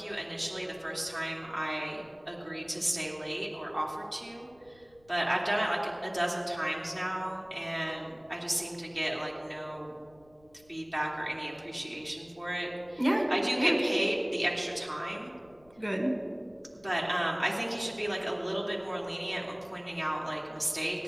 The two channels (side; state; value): left; noise; rumble, 30 dB below the sound